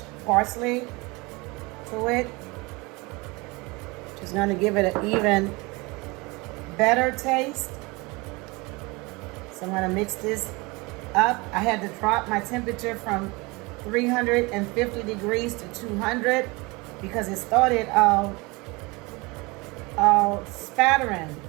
parsley to it. Just going to give it an even better taste. So I'm going to mix this up. I had to drop my temperature from 350 degrees to 200 because it started spattering.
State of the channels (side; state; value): left; quieter; 25.3 dB